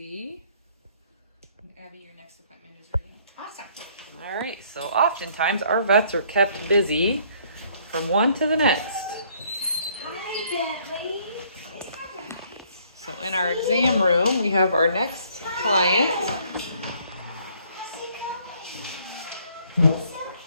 And Abby, your next appointment is ready. Awesome. All right, so oftentimes our vets are kept busy from one to the next. Hi, Bentley. So in our exam room, we have our next client. How's it going? It's okay.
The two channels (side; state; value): both; inverted; correlation -0.63